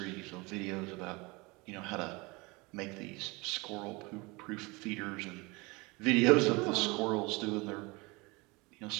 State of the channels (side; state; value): left; quieter; 25.5 dB